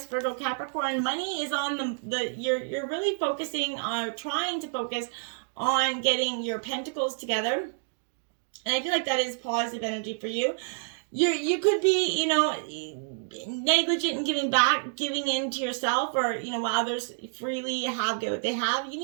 Virgo, Capricorn. Money is on you're really focusing on trying to focus on getting your pentacles together. And I feel like that is positive energy for you. You could be, negligent in giving in to yourself, or, while others freely get what they have. You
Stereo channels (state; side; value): silent; left; digital silence